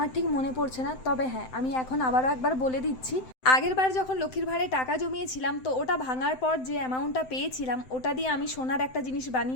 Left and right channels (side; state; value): right; late; 7.8 ms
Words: ঠিক মনে পড়ছে না, তবে হ্যাঁ, আমি এখন আবারও একবার বলে দিচ্ছি। আগের বার যখন লক্ষ্মীর ভাঁড়ে টাকা জমিয়েছিলাম, তো ওটা ভাঙার পর যে অ্যামাউন্টটা পেয়েছিলাম ওটা দিয়ে আমি সোনার একটা জিনিস